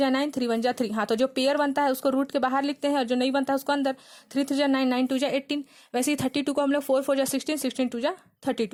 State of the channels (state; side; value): identical; both; correlation 1.00